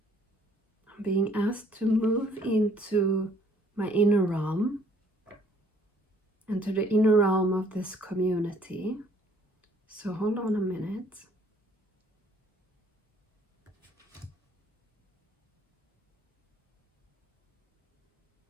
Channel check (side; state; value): both; normal; correlation 0.61